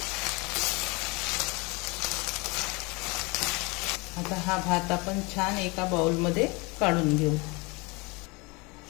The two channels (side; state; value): right; quieter; 27.3 dB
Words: आता हा भात आपण छान एका बाउलमध्ये काढून घेऊ.